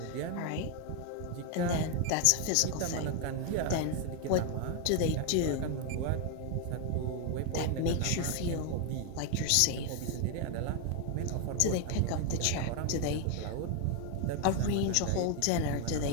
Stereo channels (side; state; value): both; different; correlation 0.01